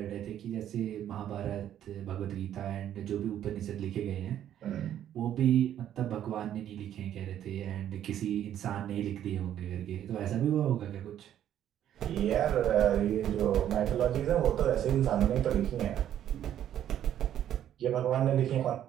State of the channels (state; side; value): quieter; left; 10.8 dB